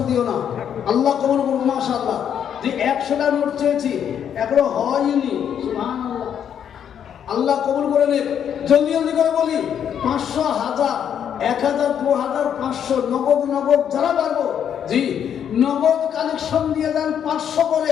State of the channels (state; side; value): quieter; right; 8.8 dB